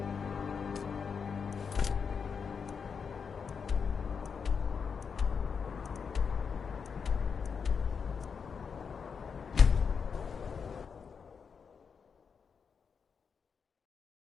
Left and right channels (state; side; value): quieter; right; 6.1 dB